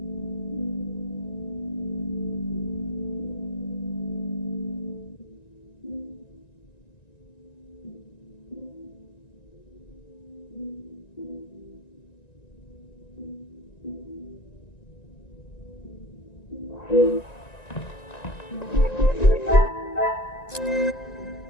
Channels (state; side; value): late; right; 1.9 ms